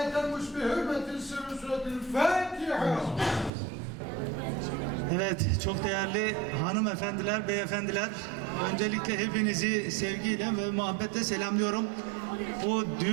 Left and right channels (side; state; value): left; drops out; at 3.5 s